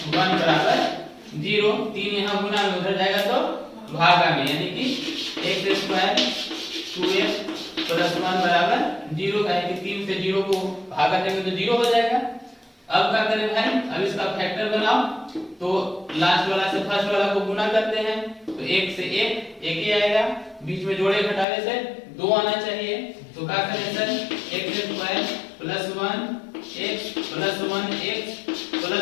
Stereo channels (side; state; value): right; drops out; at 21.5 s